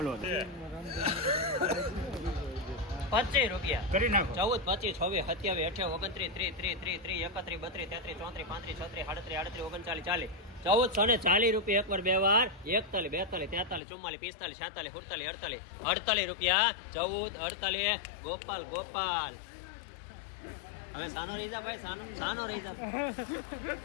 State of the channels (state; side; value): drops out; right; at 13.8 s